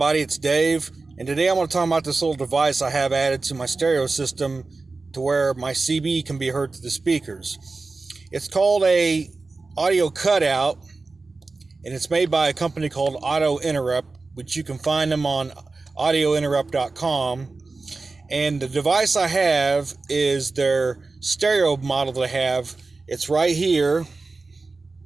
it's Dave, and today I want to talk about this little device I have added to my stereo system to where my CB can be heard through the speakers. It's called a audio cutout, and it's made by a company called Auto Interrupt, which you can find them on audiointerrupt.com. And the device I have is their stereo model that I have. It's right here.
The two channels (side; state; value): left; quieter; 3.7 dB